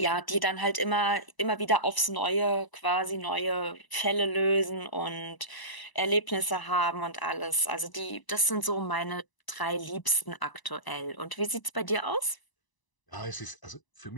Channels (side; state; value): right; late; 1.0 ms